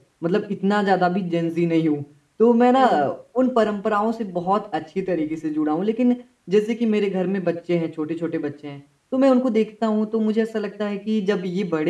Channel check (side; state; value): both; identical; correlation 1.00